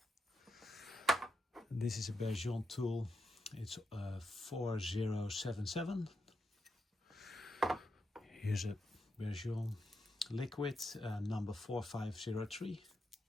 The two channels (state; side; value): normal; both; correlation 0.85